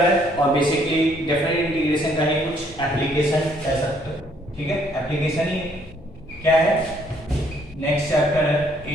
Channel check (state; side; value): normal; both; correlation 0.66